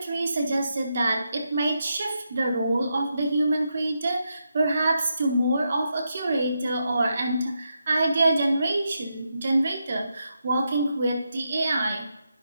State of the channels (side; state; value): both; inverted; correlation -0.84